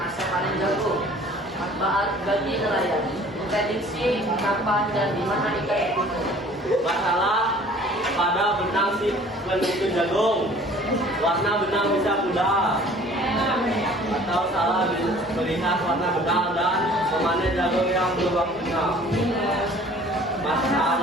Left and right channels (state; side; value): normal; both; correlation 0.50